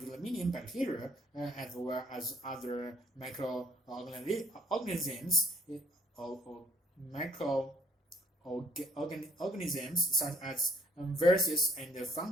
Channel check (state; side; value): normal; both; correlation 0.61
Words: million bacteria, as well as other microorganisms, microorganisms such as viruses and